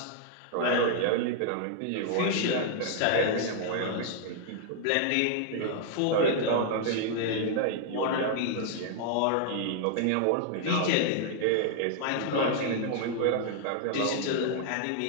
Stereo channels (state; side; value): different; both; correlation 0.00